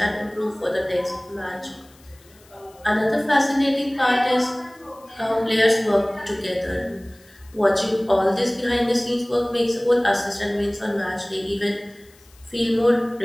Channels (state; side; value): noise; left; hiss, 28 dB below the sound